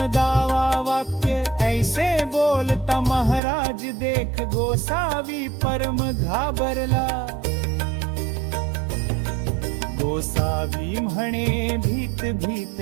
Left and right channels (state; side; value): drops out; left; at 3.4 s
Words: दावा वाक्य ऐसे बोलता महाराज देख गोसावी परम घाबरला गोसावी म्हणे भीत भीत